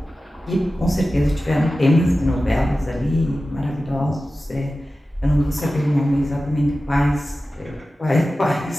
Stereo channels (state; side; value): normal; both; correlation 0.95